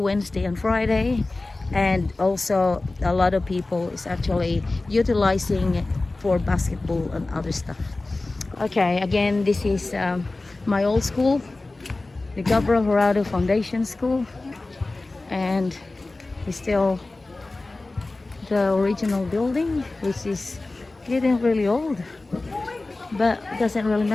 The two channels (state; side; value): quieter; right; 3.1 dB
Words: and Friday, and also a lot of people is actually utilizing it for basketball and other stuff. Okay, again, this is my old school, the Gabriel Jurado Foundation School, and it's still the original building, which is getting really old, but it doesn't really